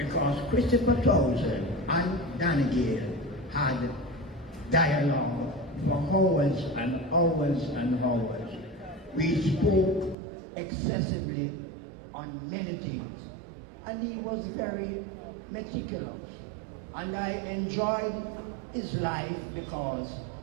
Christopher Townsend and Danigale had dialogue for hours and hours and hours. We spoke excessively on many things. And he was very meticulous. And I enjoyed his life because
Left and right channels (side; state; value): left; drops out; at 10.2 s